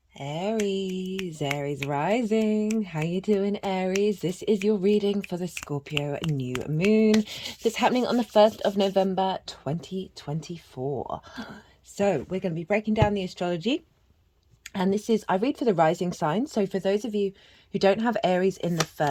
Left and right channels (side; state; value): both; identical; correlation 1.00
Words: Aries rising. How you doing, Aries? This is your reading for the Scorpio new moon that's happening on the 1st of November 2024. So we're going to be breaking down the astrology. And this is, I read for the rising sign. So for those of you who don't have Aries in the